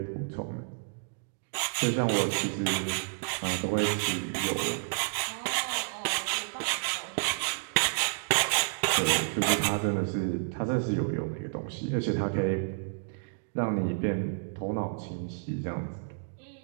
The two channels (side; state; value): left; silent; digital silence